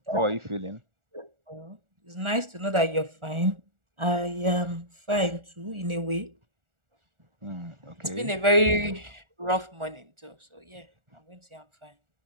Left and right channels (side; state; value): left; late; 1.4 ms